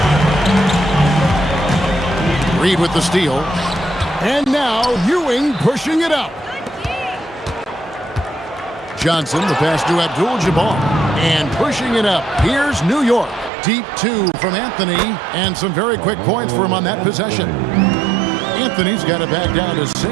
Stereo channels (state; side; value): drops out; left; at 13.5 s